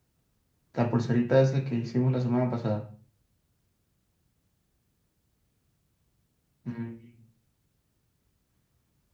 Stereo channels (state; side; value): identical; both; correlation 1.00